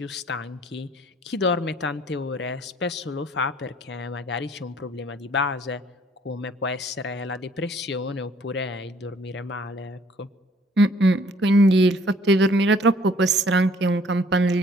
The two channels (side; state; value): both; normal; correlation 0.59